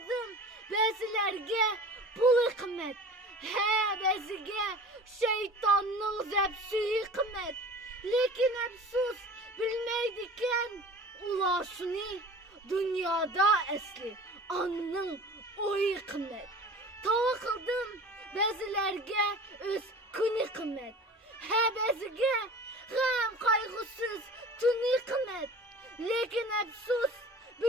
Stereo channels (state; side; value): normal; both; correlation 0.40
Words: bezlerge pulu kımmet. He bezige şeytanın zepsüyü kımmet. Lekin efsus bilmeydiken ulaşını dünyada esli anının oyu kımmet. Tava kıldım bezilerge öz kuni kımmet. He bezige gam kaygısız tuni kımmet. Lekin efsus